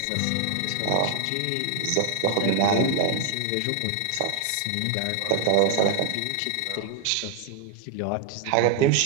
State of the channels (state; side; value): different; both; correlation 0.01